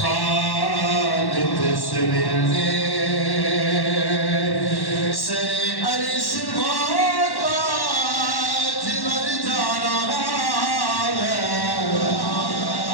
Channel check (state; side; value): late; right; 1.1 ms